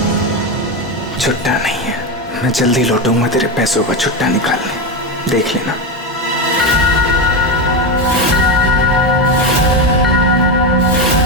छुट्टा नहीं है, मैं जल्दी लौटूंगा तेरे पैसों का छुट्टा निकालने, देख लेना।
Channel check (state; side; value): normal; both; correlation 0.13